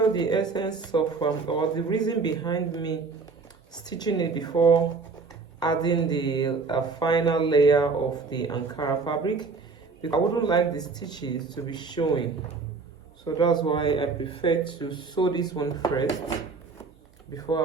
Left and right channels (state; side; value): quieter; left; 4.5 dB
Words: the essence of or the reason behind me stitching it before adding the final layer of the Ankara fabric, because I wouldn't like the stitches to be showing. So that's why I prefer to sew this one first before I